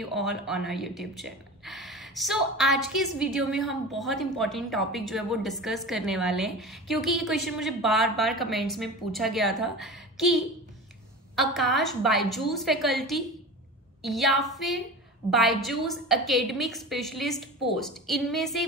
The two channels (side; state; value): both; normal; correlation 0.32